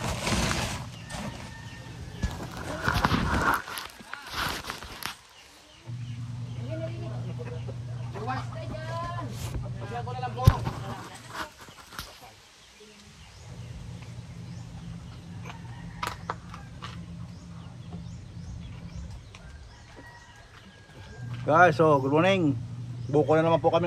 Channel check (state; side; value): identical; both; correlation 1.00